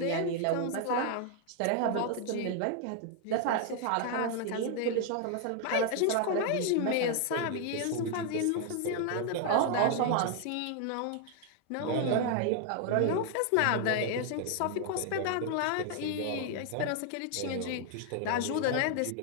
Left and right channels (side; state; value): both; different; correlation 0.00